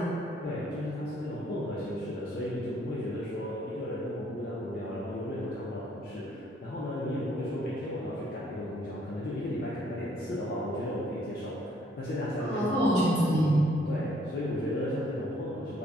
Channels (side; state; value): both; normal; correlation 0.64